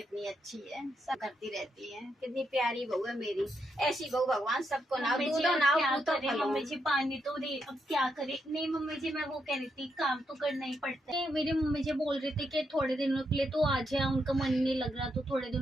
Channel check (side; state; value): both; normal; correlation 0.81